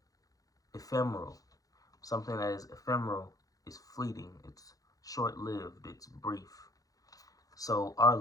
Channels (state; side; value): late; right; 0.17 ms